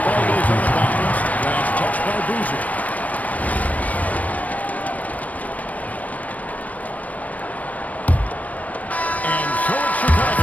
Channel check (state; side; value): late; right; 0.071 ms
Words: ball goes on the bounce. Last touch by Boozer. And so it's